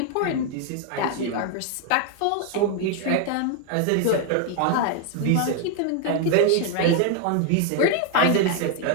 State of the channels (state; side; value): different; both; correlation 0.00